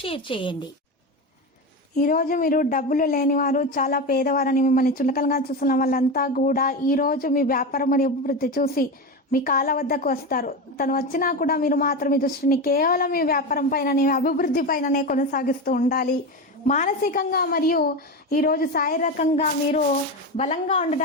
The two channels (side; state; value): both; normal; correlation 0.19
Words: షేర్ చేయండి. ఈరోజు మీరు డబ్బులు లేనివారు, చాలా పేదవారని మిమ్మల్ని చులకనగా చూస్తున్న వాళ్ళంతా కూడా ఈరోజు మీ వ్యాపారం మరియు అభివృద్ధి చూసి మీ కాళ్ళ వద్దకు వస్తారు. తను వచ్చినా కూడా మీరు మాత్రం మీ దృష్టిని కేవలం మీ వ్యాపారం పైననే, అభివృద్ధి పైననే కొనసాగిస్తూ ఉండాలి. మానసికంగా మరియు ఈరోజు శారీరకంగా మీరు బలంగా